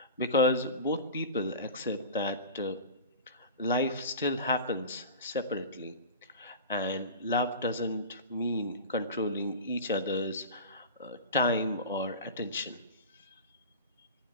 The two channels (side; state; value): both; inverted; correlation -0.32